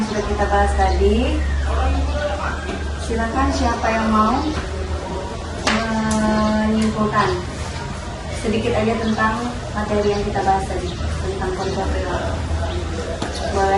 sudah kita bahas tadi. Silakan siapa yang mau menyimpulkan sedikit aja tentang materi yang kita bahas tadi tentang kontrol perilaku.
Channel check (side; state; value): both; identical; correlation 1.00